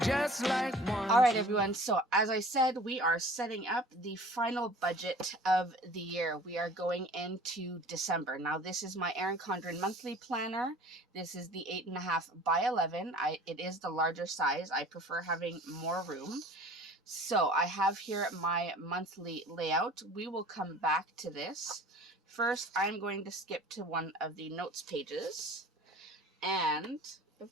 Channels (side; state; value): both; normal; correlation 0.45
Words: like one. All right, everyone. So as I said, we are setting up the final budget of the year. We are going into December. Now, this is my Erin Condren monthly planner. This is the 8.5 by 11. It is the larger size. I prefer having more room. So I have here my monthly layout. We will come back to this. First, I'm going to skip to one of the notes pages. And, of